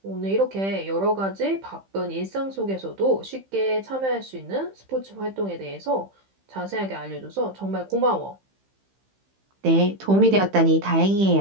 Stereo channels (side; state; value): left; late; 15 ms